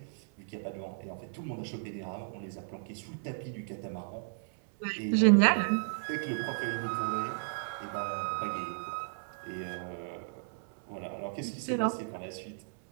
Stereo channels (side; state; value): left; silent; 55 dB below the other